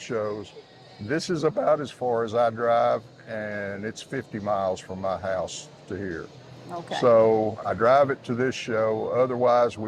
This is about as far as I drive, and it's 50 miles from my house to here. Okay. So I drive it to this show. Otherwise,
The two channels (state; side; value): identical; both; correlation 1.00